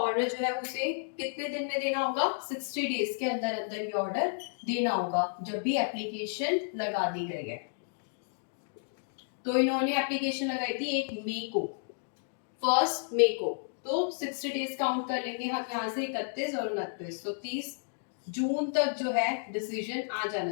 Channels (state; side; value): silent; right; digital silence